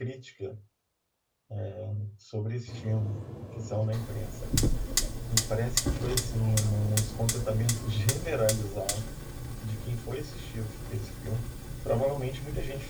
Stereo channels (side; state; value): both; identical; correlation 1.00